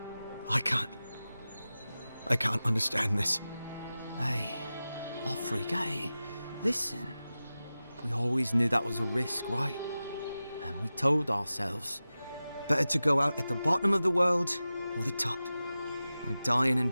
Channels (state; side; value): inverted; both; correlation -0.95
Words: I can't understand this. Hey, Offreak, hey, listen. We always knew that was a risk, right? And we told ourselves. Better to go out at the bottom of the world or the top. And dying in